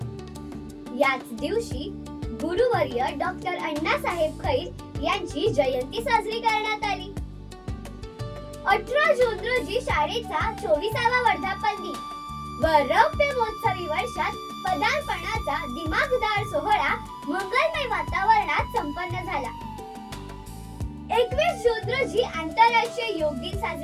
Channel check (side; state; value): both; identical; correlation 1.00